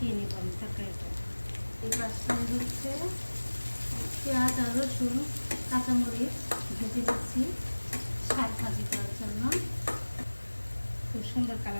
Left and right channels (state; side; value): inverted; both; correlation -1.00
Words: নিব আমি তরকারিটা। এই পাশটায় হচ্ছে পেঁয়াজ আর রসুন কাঁচামরিচ ভেজে দিচ্ছি শাক ভাজি করার জন্য। খুব সুন্দর